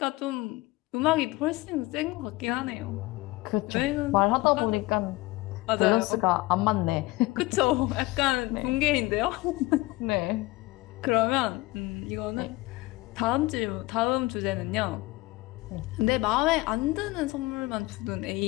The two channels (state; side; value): quieter; right; 20.9 dB